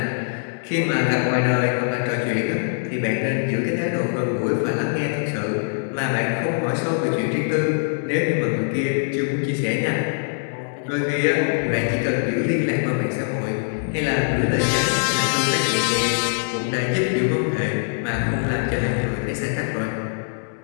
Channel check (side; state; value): right; silent; digital silence